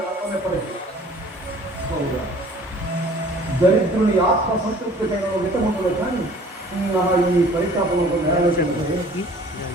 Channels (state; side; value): normal; both; correlation 0.51